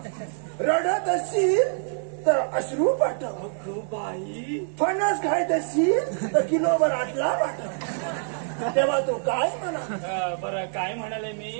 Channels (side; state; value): left; silent; 61 dB below the other